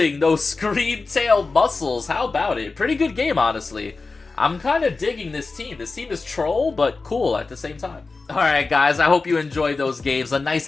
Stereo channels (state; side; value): quieter; right; 4.0 dB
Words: those Screamtail muscles. How about it? Pretty good game, honestly. I'm kind of digging this team. This team is troll, but cool at the same time. Alright guys, I hope you enjoyed those games. A